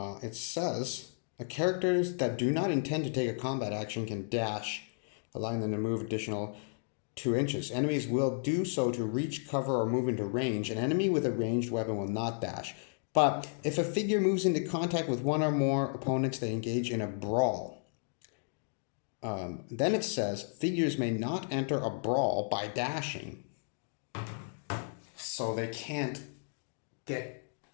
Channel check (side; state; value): right; silent; digital silence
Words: It says, characters that do not intend to take a combat action can dash, allowing them to move additional 2 inches. Enemies will do so to reach, cover, or move into range. An enemy with a ranged weapon will not dash. But if a figure moves into contact with 1 or more opponents, they engage in a brawl. Then it says, figures may not enter a brawl by dashing. So they can't get,